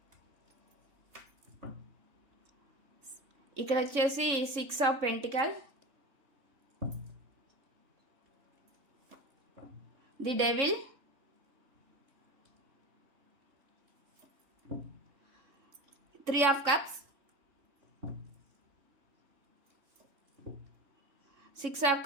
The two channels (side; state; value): left; late; 3.7 ms